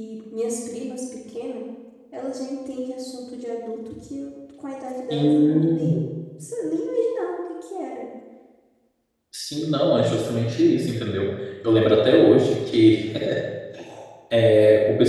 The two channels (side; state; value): both; identical; correlation 1.00